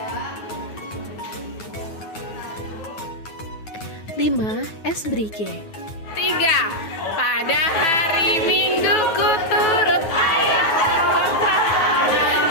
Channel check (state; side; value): late; right; 9.4 ms